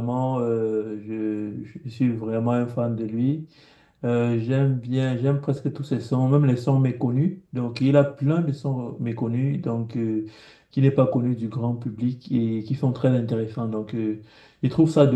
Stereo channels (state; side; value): identical; both; correlation 1.00